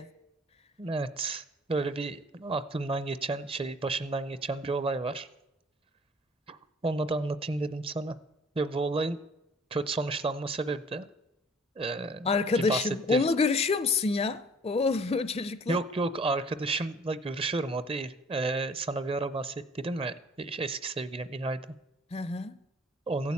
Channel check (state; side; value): normal; both; correlation 0.53